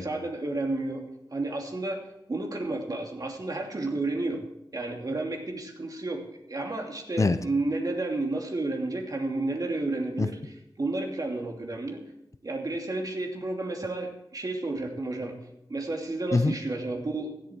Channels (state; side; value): normal; both; correlation 0.83